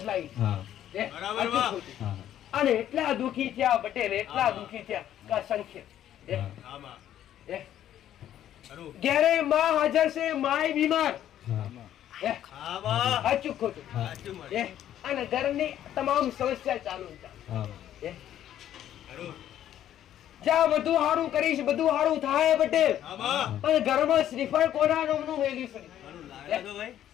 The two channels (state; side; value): quieter; right; 11.4 dB